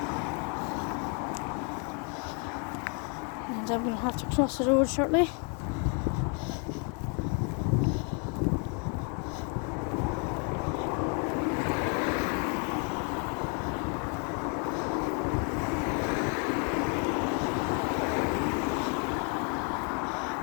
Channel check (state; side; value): quieter; right; 37.0 dB